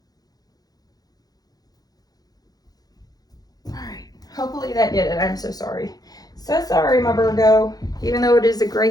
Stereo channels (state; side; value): late; right; 0.19 ms